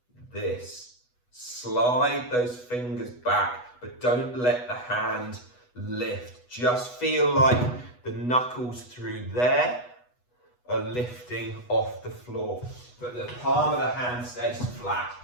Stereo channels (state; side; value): late; right; 8.1 ms